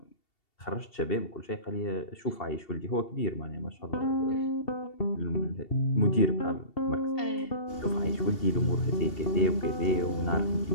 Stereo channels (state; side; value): late; right; 2.7 ms